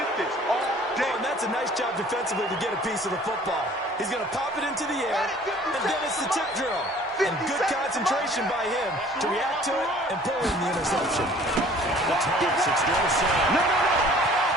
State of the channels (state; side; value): normal; both; correlation 0.52